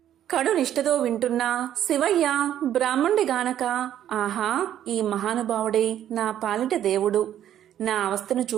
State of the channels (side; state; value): left; quieter; 11.0 dB